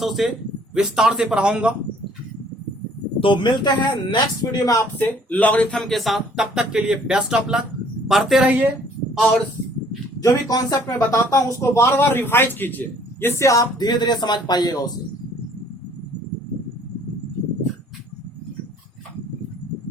उसे विस्तार से पढ़ाऊंगा। तो मिलते हैं नेक्स्ट वीडियो में आपसे लॉगरिथम के साथ। तब तक के लिए बेस्ट ऑफ लक, पढ़ते रहिए और जो भी कॉन्सेप्ट मैं बताता हूं उसको बार बार रिवाइज कीजिए, जिससे आप धीरे धीरे समझ पाइएगा उसे।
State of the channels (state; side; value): normal; both; correlation 0.58